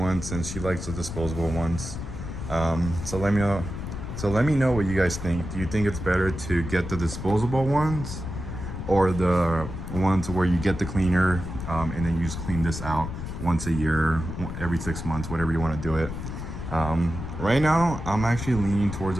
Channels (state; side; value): noise; left; rumble, 7 dB below the sound